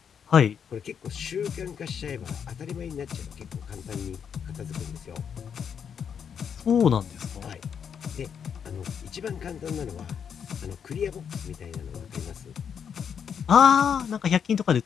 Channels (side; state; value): right; quieter; 7.5 dB